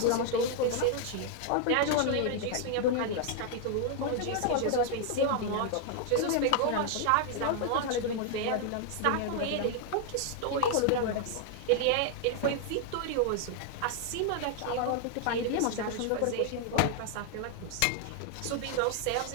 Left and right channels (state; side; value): different; both; correlation 0.00